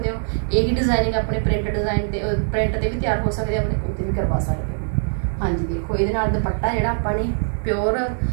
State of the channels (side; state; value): left; silent; 64 dB below the other